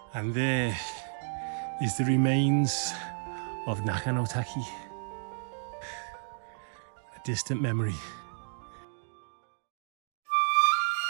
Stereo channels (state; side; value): silent; left; digital silence